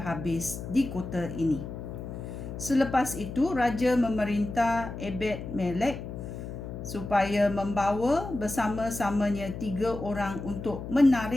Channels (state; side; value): noise; left; hum, 8 dB below the sound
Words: di kota ini." Selepas itu, raja memerintah Ebed-Melek supaya membawa bersama-samanya 3 orang untuk